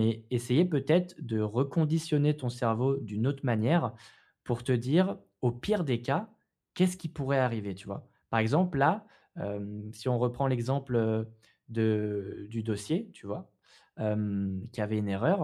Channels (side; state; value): both; identical; correlation 1.00